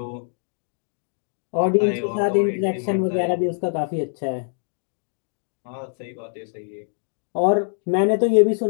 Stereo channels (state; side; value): silent; right; digital silence